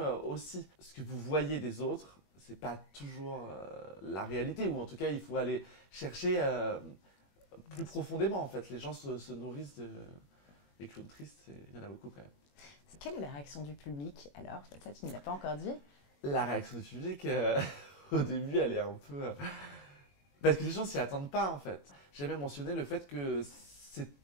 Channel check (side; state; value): right; late; 21 ms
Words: aussi. Ce que vous voyez des autres, c'est pas toujours la réalité, ou en tout cas, il faut aller chercher plus profondément, en fait. Les gens se nourrissent des clowns tristes, il y en a beaucoup quand même. Quelle est la réaction du public alors? Ça, tu ne l'as pas encore dit. La réaction du public, au début, elle est un peu... parce que les gens s'y attendent pas, en fait. J'ai même mentionné le fait que,